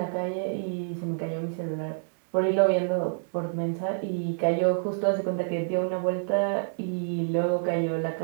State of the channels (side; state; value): left; silent; 57 dB below the other